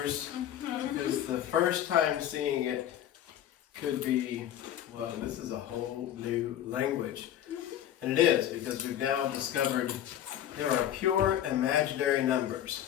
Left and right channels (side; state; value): right; quieter; 11.2 dB